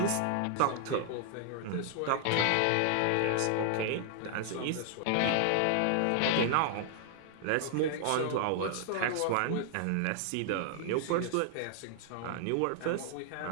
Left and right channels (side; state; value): both; different; correlation 0.00